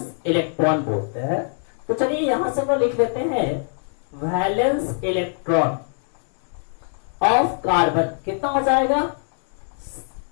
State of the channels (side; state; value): right; silent; 61 dB below the other